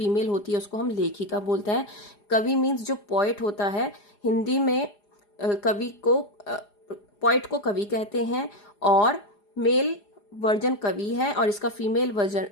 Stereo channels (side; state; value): right; late; 4.9 ms